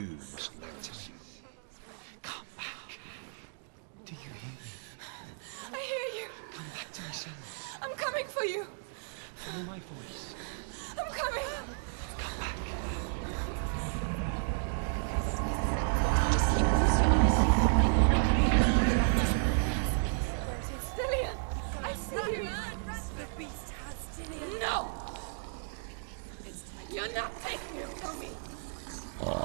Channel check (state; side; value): silent; left; digital silence